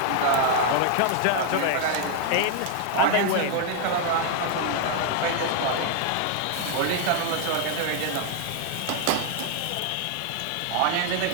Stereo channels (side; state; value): both; different; correlation 0.00